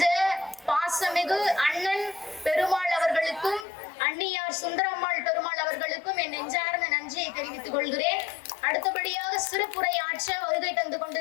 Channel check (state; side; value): drops out; right; at 3.7 s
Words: பாசமிகு அண்ணன் பெருமாள் அவர்களுக்கும் அண்ணியார் சுந்தரம்மாள் பெருமாள் அவர்களுக்கும் என் நெஞ்சார்ந்த நன்றியை தெரிவித்துக் கொள்கிறேன். அடுத்தபடியாக சிறப்புரை ஆற்ற வருகை தந்து